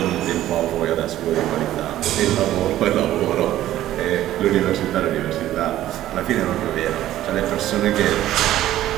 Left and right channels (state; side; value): quieter; left; 13.6 dB